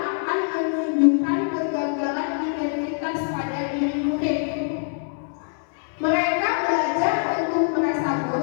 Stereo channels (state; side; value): silent; right; digital silence